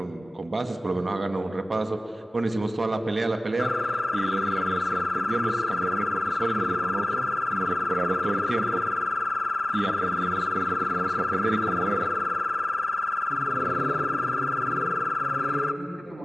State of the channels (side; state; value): both; normal; correlation 0.96